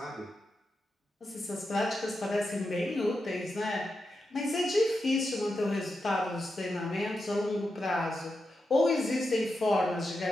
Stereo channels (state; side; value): normal; both; correlation 0.88